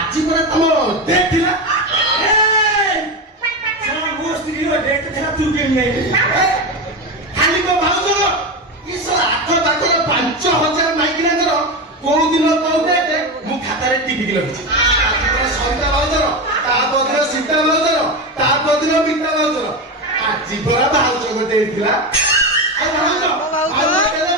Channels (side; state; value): both; normal; correlation 0.18